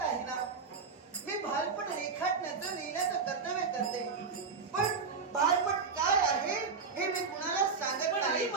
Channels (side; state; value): left; quieter; 5.0 dB